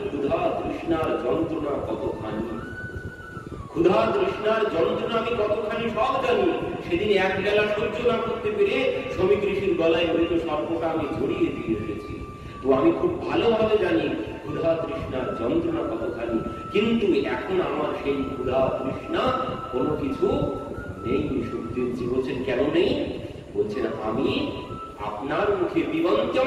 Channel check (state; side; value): identical; both; correlation 1.00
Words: ক্ষুধা তৃষ্ণার যন্ত্রণা কতখানি, ক্ষুধা তৃষ্ণার যন্ত্রণা আমি কতখানি সব জানি। সেদিন এক বেলা সহ্য না করতে পেরে শ্রমিক ঋষির গলায় মৃত সর্পটা আমি জড়িয়ে দিয়ে এসেছি। তো আমি খুব ভালোভাবে জানি ক্ষুধা তৃষ্ণার যন্ত্রণা কতখানি, কিন্তু এখন আমার সেই ক্ষুধা তৃষ্ণা কোনো কিছু নেই। সুখদেবজি বলছেন কেন নেই? বলছেন আমি আপনার মুখে